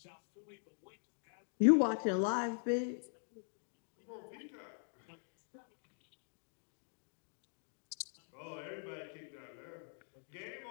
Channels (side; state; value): right; silent; digital silence